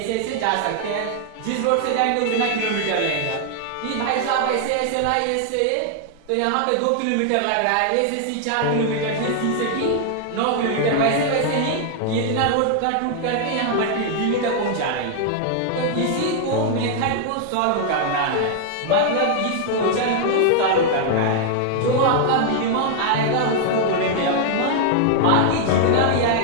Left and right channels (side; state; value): both; different; correlation 0.00